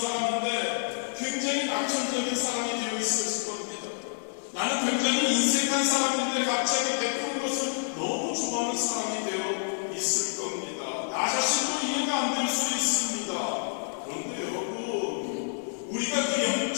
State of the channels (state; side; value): silent; right; digital silence